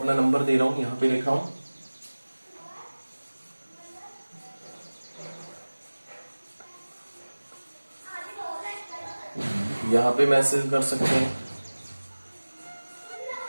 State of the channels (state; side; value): inverted; both; correlation -1.00